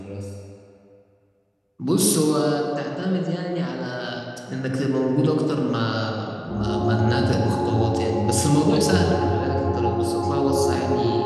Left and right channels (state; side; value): identical; both; correlation 1.00